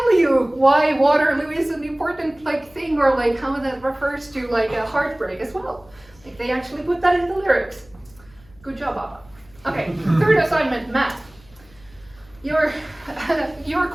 you why Waterloo is an important thing, or how that refers to a heartbreak as well. They actually put that in the lyrics. Good job, ABBA. Okay, third assignment, math. Your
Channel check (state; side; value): noise; left; hum, 27 dB below the sound